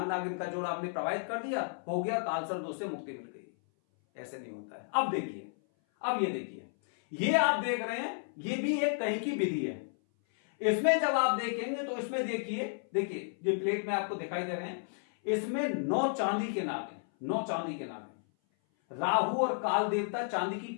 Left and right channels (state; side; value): silent; right; 56 dB below the other